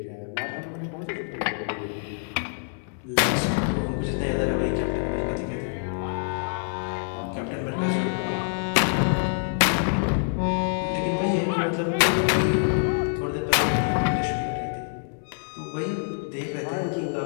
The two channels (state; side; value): silent; right; 59 dB below the other